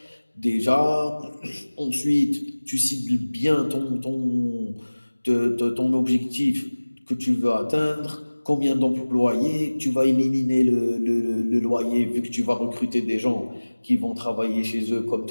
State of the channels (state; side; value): inverted; both; correlation -1.00